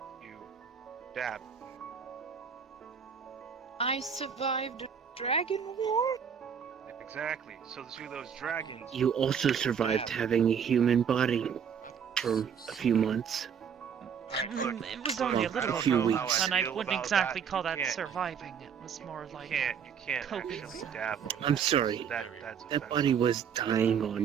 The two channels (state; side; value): quieter; left; 7.4 dB